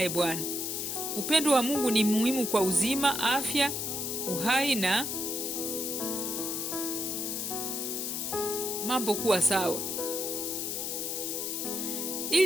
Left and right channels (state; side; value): noise; left; hiss, 2 dB below the sound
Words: Bwana. Upendo wa Mungu ni muhimu kwa uzima, afya, uhai na mambo kuwa sawa.